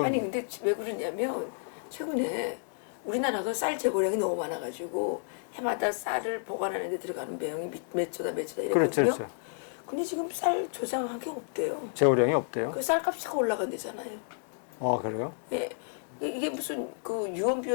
아니 근데 왜 그러냐면 최근에 우리나라가 쌀 재고량이 너무 많아가지고 해마다 쌀을 보관하는 데 들어가는 비용이 몇 조다 이랬거든요. 그렇죠. 근데 지금 쌀 조장한 게 없대요. 재고량이 없대요. 그 쌀값이 자꾸 올라간대잖아요. 그래요? 예. 이게 무슨 그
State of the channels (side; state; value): right; silent; digital silence